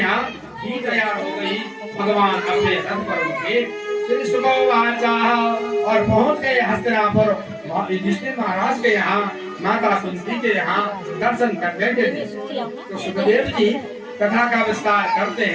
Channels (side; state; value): both; identical; correlation 1.00